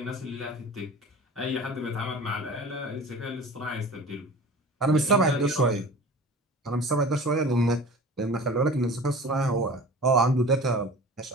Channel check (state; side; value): normal; both; correlation 0.39